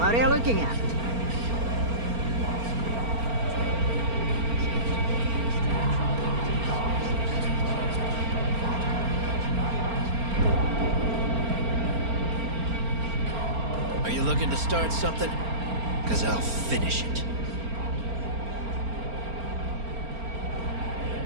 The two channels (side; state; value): left; late; 4.4 ms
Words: are you looking at? Are you looking to start something? Because I'll finish it.